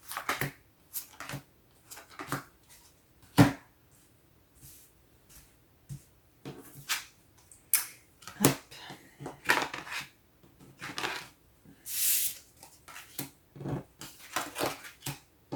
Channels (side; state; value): both; identical; correlation 1.00